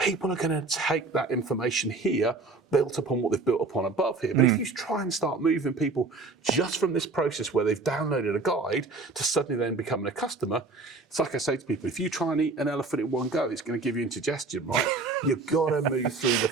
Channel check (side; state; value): left; quieter; 3.7 dB